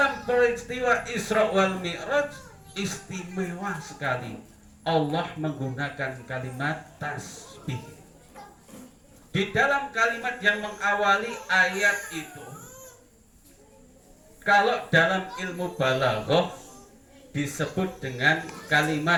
peristiwa Isra wal Mi'raj istimewa sekali, Allah menggunakan kalimat tasbih. Di dalam kalimat yang mengawali ayat itu, kalau dalam ilmu balaghah disebut dengan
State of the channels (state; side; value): identical; both; correlation 1.00